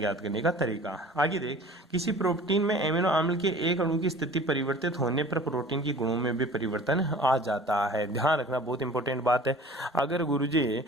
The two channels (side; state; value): both; normal; correlation 0.45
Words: करने का तरीका। आगे देख, किसी प्रोटीन में एमिनो अम्ल के एक अणु की स्थिति परिवर्तित होने पर प्रोटीन के गुणों में भी परिवर्तन आ जाता है। ध्यान रखना, बहुत इंपॉर्टेंट बात है। अगर गुरुजी